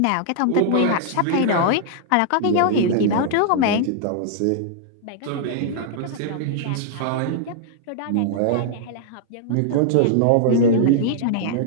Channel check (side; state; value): both; different; correlation -0.01